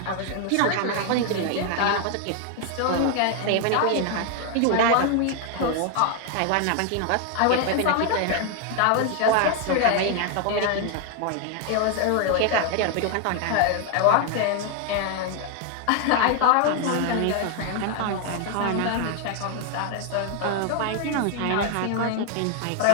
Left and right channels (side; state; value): both; different; correlation 0.00